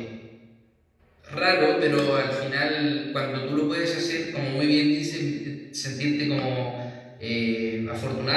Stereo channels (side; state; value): both; identical; correlation 1.00